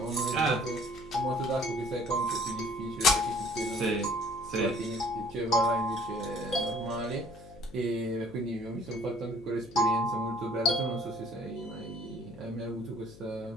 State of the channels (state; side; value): noise; left; hum, 19 dB below the sound